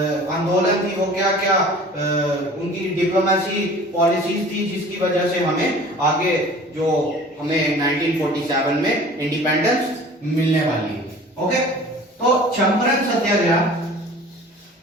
आंदोलन थी, वो क्या क्या उनकी डिप्लोमेसी पॉलिसीज थी, जिसकी वजह से हमें आगे जो हमें 1947 में इंडिपेंडेंस मिलने वाली है। ओके, तो चंपारण सत्याग्रह,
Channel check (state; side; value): normal; both; correlation 0.45